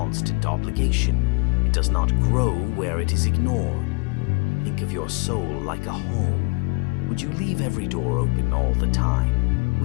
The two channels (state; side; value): quieter; right; 31.9 dB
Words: obligation. It does not grow where it is ignored. Think of your soul like a home. Would you leave every door open all the time?